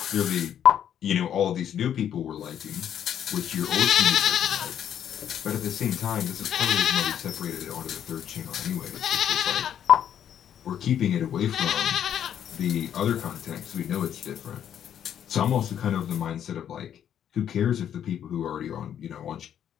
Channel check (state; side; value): quieter; right; 9.6 dB